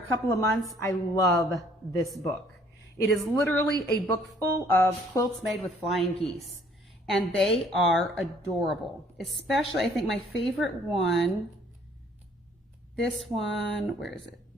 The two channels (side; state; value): both; normal; correlation 0.60